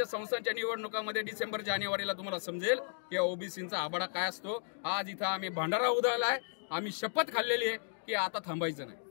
संस्थांच्या निवडणुकांमध्ये डिसेंबर-जानेवारीला तुम्हाला समजेल की ओबीसींचा आबाडा काय असतो. आज इथं आम्ही भांडारा उधळलाय, आम्ही शपथ खाल्लेली आहे की आता थांबायचं नाही.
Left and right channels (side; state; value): right; silent; digital silence